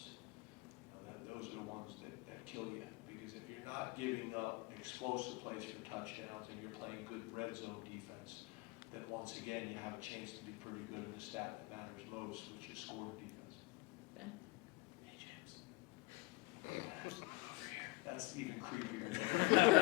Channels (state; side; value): quieter; right; 24.3 dB